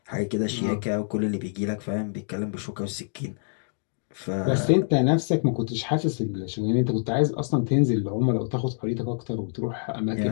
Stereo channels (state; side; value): silent; right; digital silence